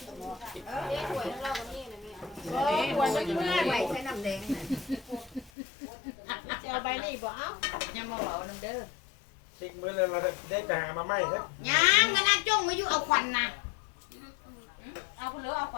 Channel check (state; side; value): drops out; right; at 5.5 s